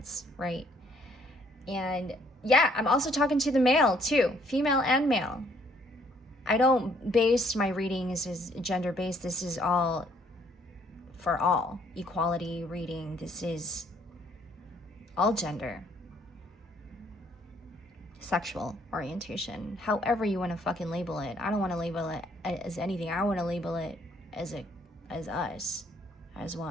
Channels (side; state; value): both; normal; correlation 0.65